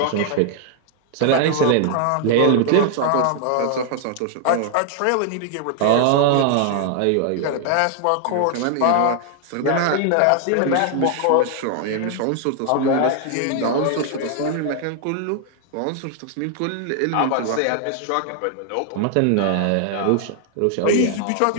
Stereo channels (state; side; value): different; both; correlation 0.00